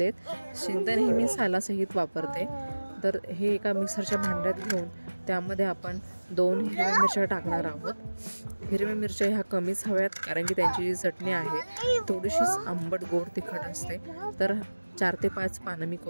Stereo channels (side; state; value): both; inverted; correlation -1.00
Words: शेंगदाणे हे मी सालासहित वापरते. तर हे एका मिक्सरच्या भांड्यात घेऊन त्यामध्ये आपण 2 हिरव्या मिरच्या टाकणार आहोत. हिरव्या मिरच्या ह्या कमीच हव्यात, कारण की त्यांची जी चटणी आहे थोडीशीच आंबट गोड तिखट असते. तर 4 ते 5 पानं मी